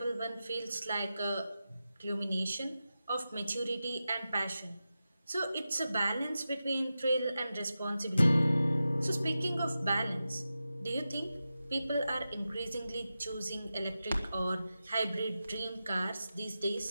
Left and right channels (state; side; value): inverted; both; correlation -0.92